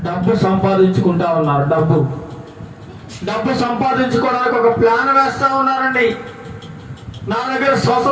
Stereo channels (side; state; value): both; identical; correlation 1.00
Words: డబ్బు సంపాదించుకుంటా ఉన్నారు. డబ్బు సంపాదించుకోవడానికి ఒక ప్లాన్ వేస్తా ఉన్నారండి. నా దగ్గర